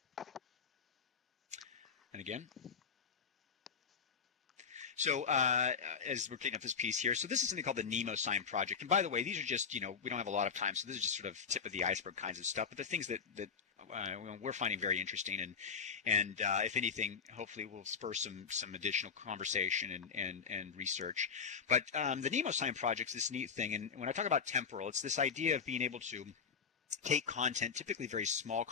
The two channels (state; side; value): quieter; right; 6.3 dB